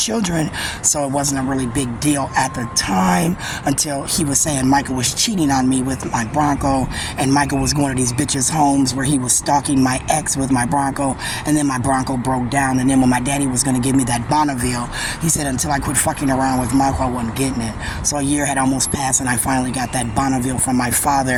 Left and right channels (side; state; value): both; identical; correlation 1.00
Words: so it wasn't a really big deal at the time until he was saying Michael was cheating on me with my Bronco, and Michael was going to these bitches' homes where he was stalking my ex with my Bronco, and then my Bronco broke down, and then when my daddy was going to give me that Bonneville, he said until I quit fucking around with Michael, I wasn't getting it. So a year had almost passed, and I finally got that Bonneville from my